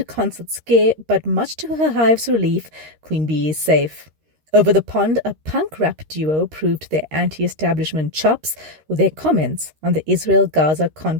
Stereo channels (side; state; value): left; late; 13 ms